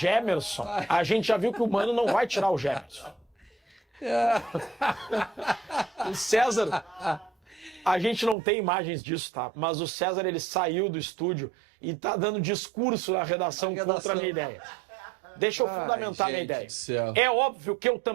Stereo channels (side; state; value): left; drops out; at 8.3 s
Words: a gente já viu que o Mano não vai tirar o Gemerson. O César, a gente não tem imagens disso, tá? Mas o César, ele saiu do estúdio e tá dando discurso na redação contra a minha ideia. Deixa eu fundamentar a minha gente ideia. do céu. É óbvio que eu